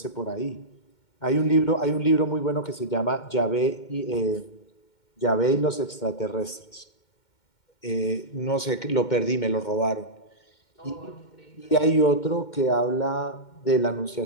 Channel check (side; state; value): right; late; 2.1 ms